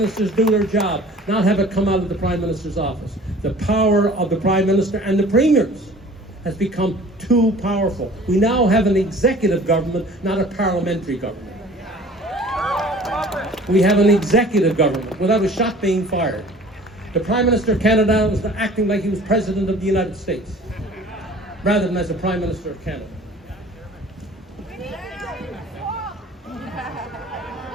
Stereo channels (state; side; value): normal; both; correlation 0.47